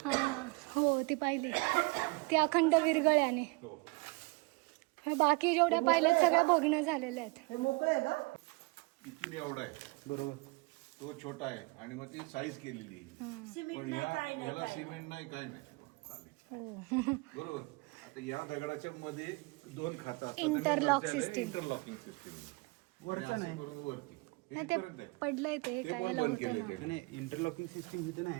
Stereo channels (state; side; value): quieter; left; 28.0 dB